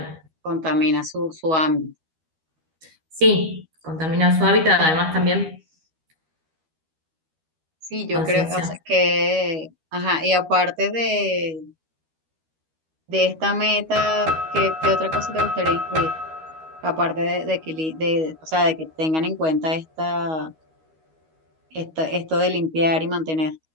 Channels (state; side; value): late; left; 13 ms